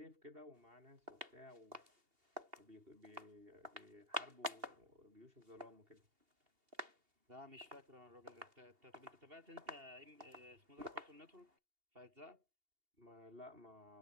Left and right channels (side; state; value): left; late; 2.8 ms